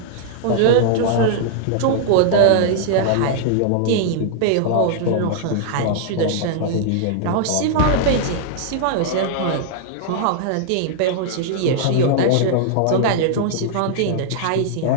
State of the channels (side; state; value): both; different; correlation -0.01